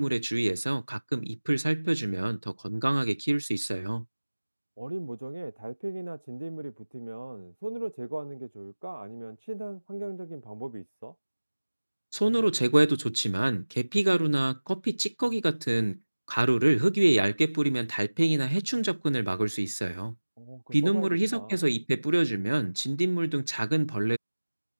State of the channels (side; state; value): both; inverted; correlation -1.00